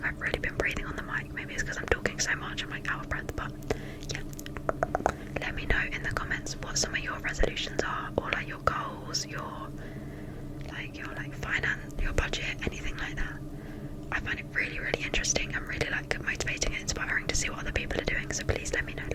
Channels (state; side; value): identical; both; correlation 1.00